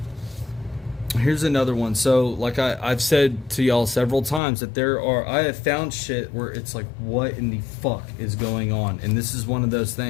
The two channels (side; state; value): right; drops out; at 4.4 s